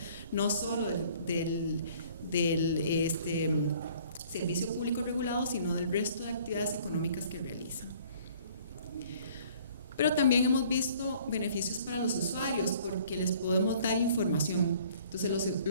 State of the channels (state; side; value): inverted; both; correlation -0.56